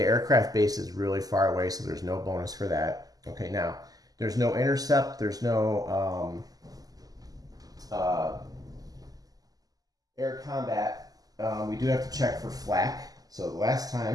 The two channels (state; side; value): late; left; 0.18 ms